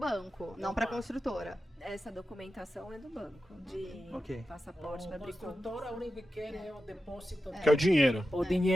não para a construtora. Essa documentação é do banco, de Ok. passaporte para A abrir conta. construtora, a única que quer é o depósito, Que é o dinheiro. o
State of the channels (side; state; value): both; normal; correlation 0.91